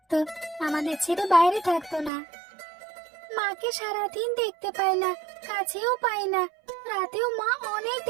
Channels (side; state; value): left; drops out; at 2.1 s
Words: আমাদের ছেড়ে বাইরে থাকতো না। মাকে সারাদিন দেখতে পাই না, কাছেও পাই না। রাতেও মা অনেক